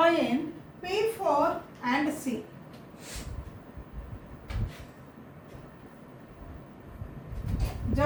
P4 and C.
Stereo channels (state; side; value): identical; both; correlation 1.00